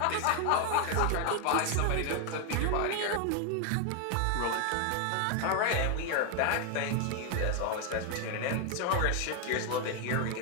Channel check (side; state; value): both; different; correlation 0.01